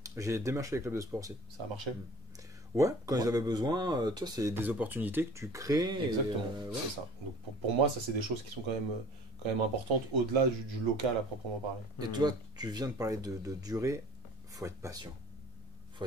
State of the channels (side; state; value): both; normal; correlation 0.45